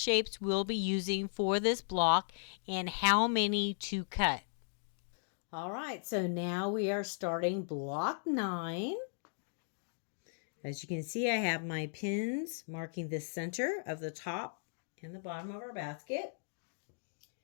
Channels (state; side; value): silent; right; digital silence